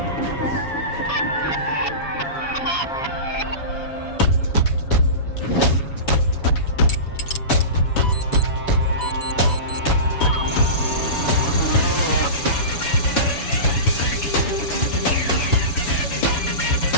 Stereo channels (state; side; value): late; right; 7.1 ms